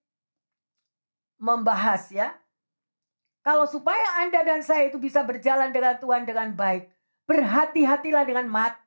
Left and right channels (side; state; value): both; inverted; correlation -1.00